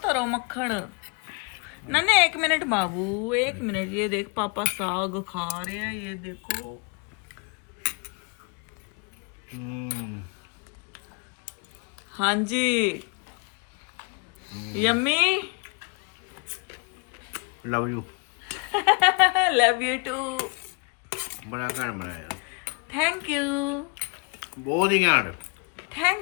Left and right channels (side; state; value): right; quieter; 34.1 dB